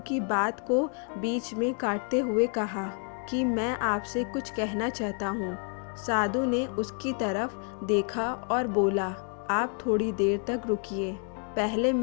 बात को बीच में काटते हुए कहा कि मैं आपसे कुछ कहना चाहता हूँ। साधु ने उसकी तरफ देखा और बोला, आप थोड़ी देर तक रुकिए, पहले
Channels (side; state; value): right; quieter; 39.8 dB